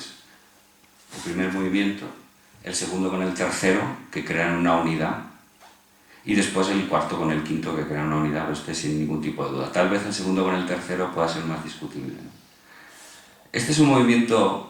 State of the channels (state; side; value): identical; both; correlation 1.00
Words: El primer movimiento, el segundo con el tercero, que crean una unidad, y después el cuarto con el quinto, que crean una unidad, pues sin ningún tipo de duda. Tal vez el segundo con el tercero pueda ser más discutible, ¿no? Este es un